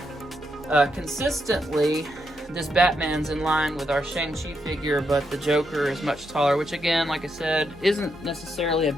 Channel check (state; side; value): normal; both; correlation 0.81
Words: consistently, this Batman's in line with our Shang-Chi figure, but the Joker is much taller, which again, like I said, isn't necessarily a